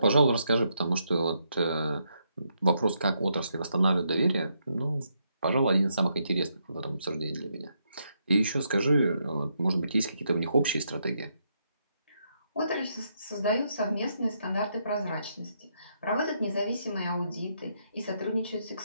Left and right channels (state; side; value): inverted; both; correlation -0.78